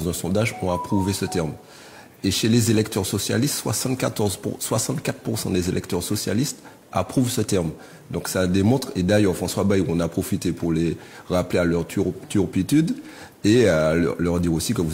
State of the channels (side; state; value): both; identical; correlation 1.00